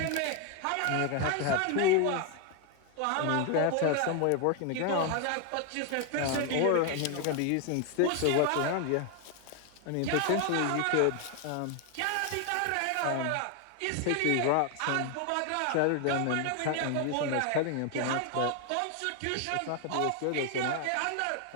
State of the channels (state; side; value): different; both; correlation 0.01